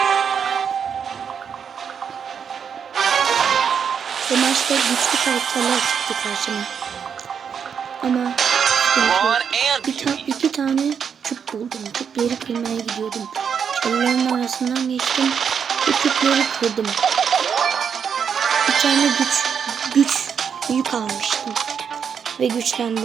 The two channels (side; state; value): left; quieter; 7.2 dB